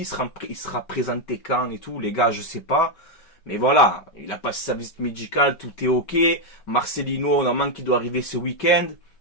il sera présenté quand et tout, les gars, je sais pas. Mais voilà, il a passé sa visite médicale, tout est ok. Marcelino, normalement, qui doit arriver ce week-end.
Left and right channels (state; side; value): late; right; 5.2 ms